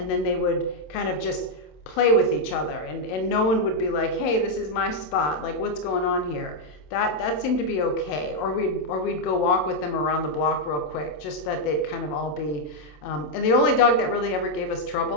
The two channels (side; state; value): right; late; 27 ms